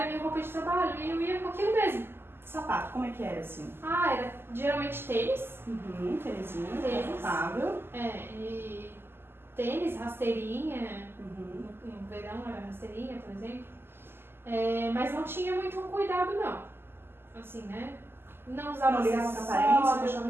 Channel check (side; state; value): left; late; 0.11 ms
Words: minha roupa de trabalho e eu ia com aquilo mesmo. Sapato, como é que era assim? Era geralmente tênis. Tênisinho, Tênis. confortável. E tênis, rasteirinha. No verão era rasteirinha, por exemplo. Mas não tinha muito cuidado, não. Assim, né? Não usava não ligava pra aparência, eu achava